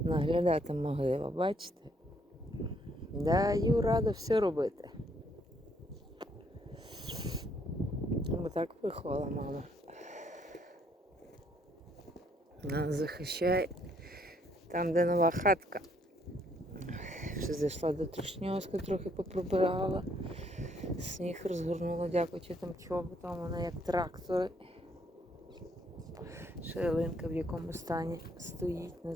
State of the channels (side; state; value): both; normal; correlation 0.68